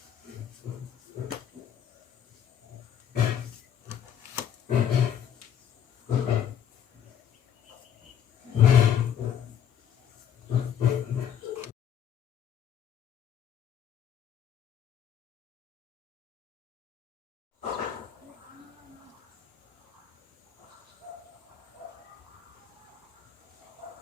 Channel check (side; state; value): right; quieter; 9.1 dB